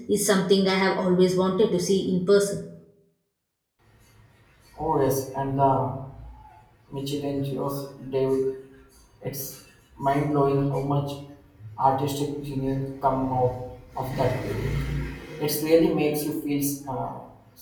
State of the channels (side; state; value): both; identical; correlation 1.00